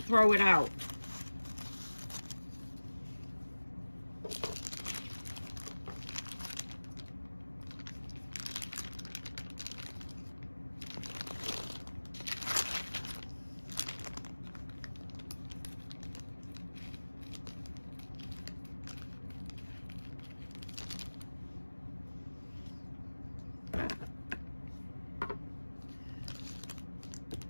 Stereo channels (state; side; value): inverted; both; correlation -1.00